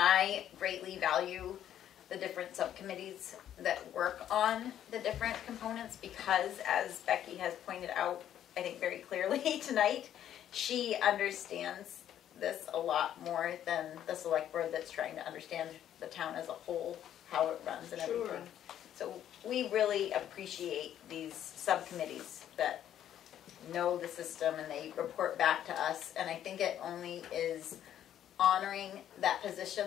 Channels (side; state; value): right; quieter; 10.8 dB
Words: greatly value the different subcommittees that work on the different components because, as Becky has pointed out, I think very clearly tonight, she understands this a lot more than the select board that's trying to understand the town as a whole, how it runs and everything. So we really appreciate these subcommittees that know the system and they report back to us, and I think it only is honoring that